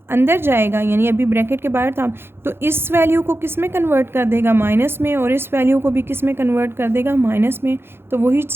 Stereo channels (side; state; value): left; late; 0.11 ms